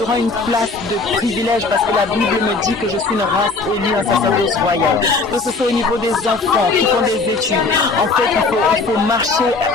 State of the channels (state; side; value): quieter; right; 3.9 dB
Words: auront une place de privilège parce que la Bible me dit que je suis une race élue, un sacerdoce royal. Que ce soit au niveau des enfants qui font des études. En fait, il faut marcher